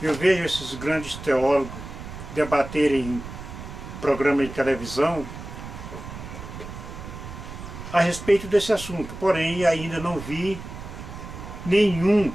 Eu vejo esses grandes teólogos debaterem em programa de televisão a respeito desse assunto, porém ainda não vi nenhum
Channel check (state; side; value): noise; right; rumble, 11 dB below the sound